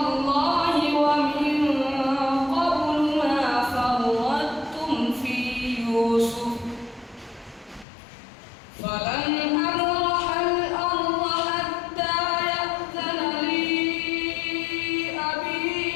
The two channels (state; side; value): drops out; right; at 7.9 s